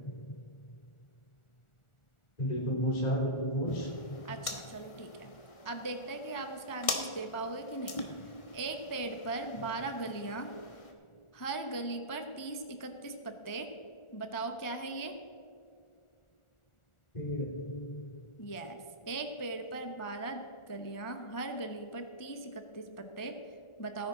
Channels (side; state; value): right; late; 1.6 ms